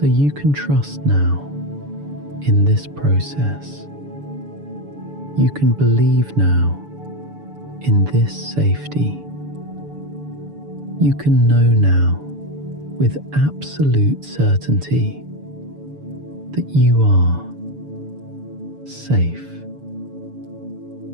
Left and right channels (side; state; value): left; late; 6.9 ms